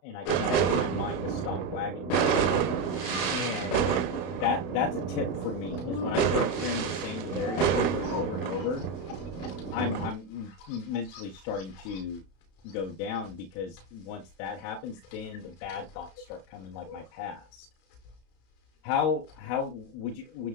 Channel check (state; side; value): late; right; 32 ms